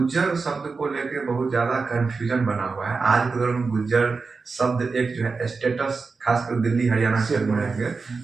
शब्द को लेकर बहुत ज्यादा कंफ्यूजन बना हुआ है आज के दौर में। गुज्जर शब्द एक जो है स्टेटस, खासकर दिल्ली हरियाणा क्षेत्र में रहेंगे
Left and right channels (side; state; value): left; quieter; 4.5 dB